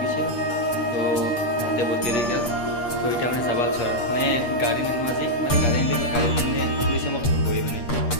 গৈছিল, তো তাতে বহুত দেৰি গ'ল। তো এতিয়া মানে যাব আছোঁ আৰু মানে গাড়ী নিনো আজি, মানে গাড়ী আনিলে গাড়ী মানে পুলিচে মোক ধৰিবই, মানে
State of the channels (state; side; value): late; right; 8.4 ms